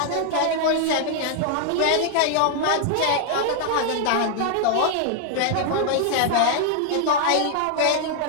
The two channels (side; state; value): both; different; correlation 0.00